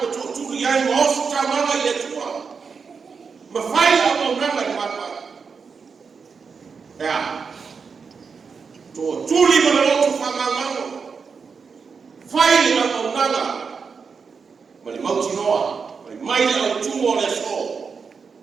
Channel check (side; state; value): left; quieter; 5.5 dB